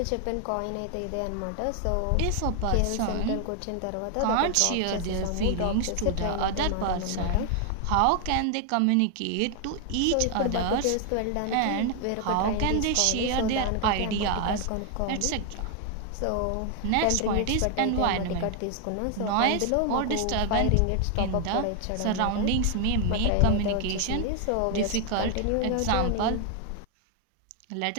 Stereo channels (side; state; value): both; different; correlation 0.00